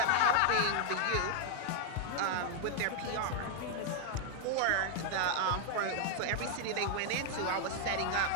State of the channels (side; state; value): both; different; correlation 0.00